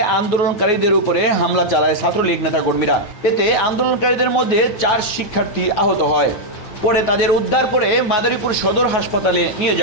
আন্দোলনকারীদের উপরে হামলা চালায় ছাত্রলীগ নেতাকর্মীরা। এতে আন্দোলনকারীদের মধ্যে 4 শিক্ষার্থী আহত হয়। পরে তাদের উদ্ধার করে মাদারীপুর সদর হাসপাতালে নিয়ে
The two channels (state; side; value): late; right; 9.5 ms